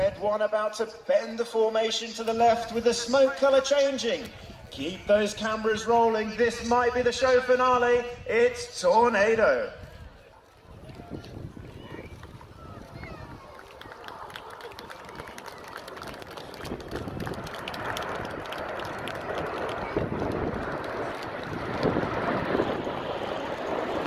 1 about to bend the formation to the left with the smoke colour changing. Keep those cameras rolling, this might be the show finale. It's tornado.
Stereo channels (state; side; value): identical; both; correlation 1.00